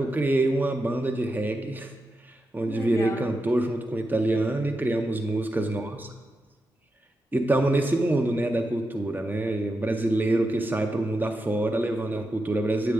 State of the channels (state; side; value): normal; both; correlation 0.88